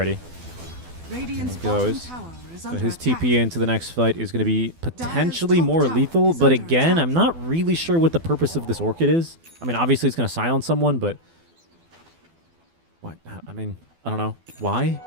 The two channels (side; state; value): left; late; 12 ms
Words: Radiant's There he bottom goes. tower is So under his attack. TP into the next fight is going to be potentially top more tower lethal, is but under again, attack. I'm not really sure what the purpose of this Orchid is. I mean, obviously it's going to silence someone, but what? I mean, I don't know. Why?